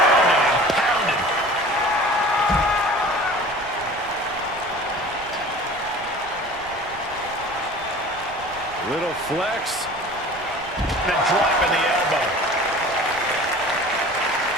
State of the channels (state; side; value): noise; right; rumble, 20 dB below the sound